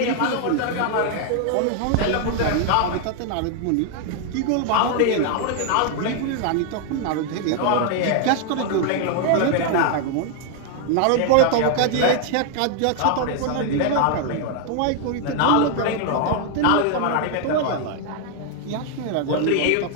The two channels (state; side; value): different; both; correlation 0.00